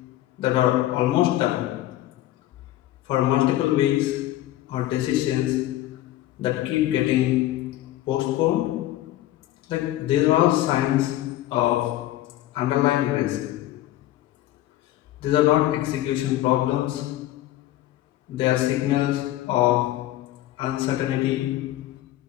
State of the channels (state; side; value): quieter; right; 14.7 dB